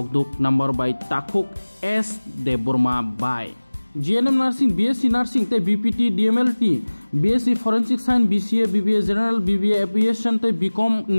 नंबर बाय ताकुक एस देबरमा बाय जीएनएम नर्सिंग बीएससी नर्सिंग ते BPT DMLT BSc forensic science BCA BBA general BBA aviation ते बीकॉम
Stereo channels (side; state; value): both; inverted; correlation -1.00